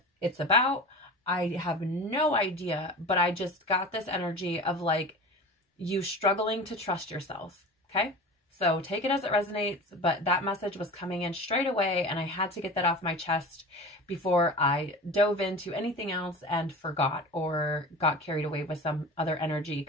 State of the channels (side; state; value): both; normal; correlation 0.34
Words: it's about. I have no idea, but I just got this energy of like you struggling to trust yourself. Okay. So take it as it resonates, but that message was coming in straight away and I had to get that off my chest before I dove into anything else and forgot or got carried away with some other energy